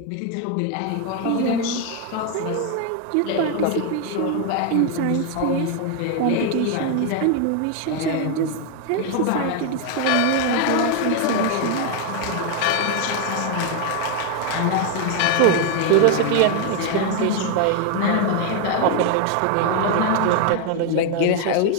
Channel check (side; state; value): both; different; correlation 0.01